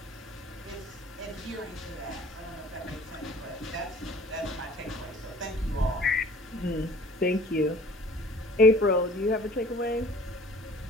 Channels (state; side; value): normal; both; correlation 0.50